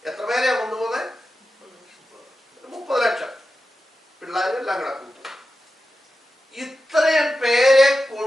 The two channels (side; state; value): both; normal; correlation 0.91